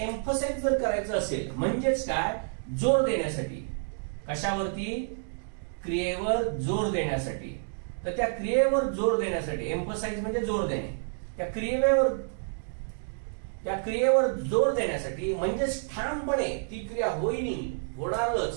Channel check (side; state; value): left; silent; digital silence